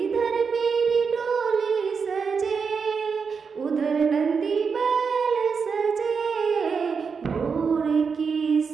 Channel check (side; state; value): left; quieter; 5.6 dB